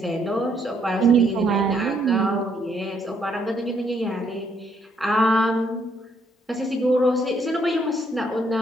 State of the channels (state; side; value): normal; both; correlation 0.71